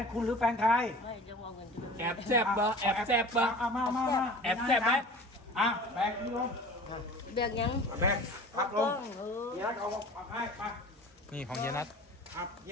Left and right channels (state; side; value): normal; both; correlation 0.41